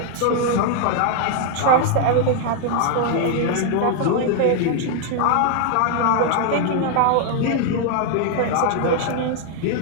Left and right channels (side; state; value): both; different; correlation 0.00